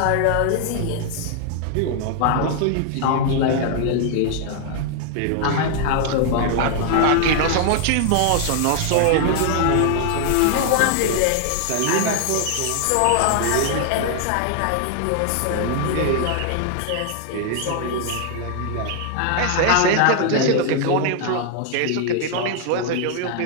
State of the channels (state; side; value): different; both; correlation 0.00